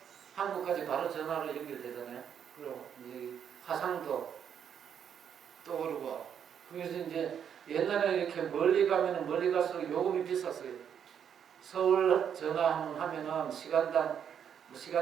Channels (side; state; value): left; quieter; 8.3 dB